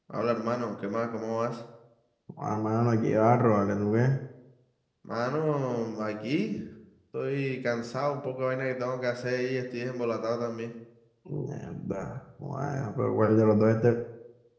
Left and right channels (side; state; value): both; identical; correlation 1.00